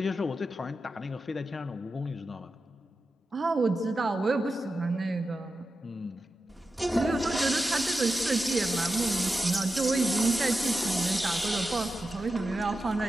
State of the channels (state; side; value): normal; both; correlation 0.91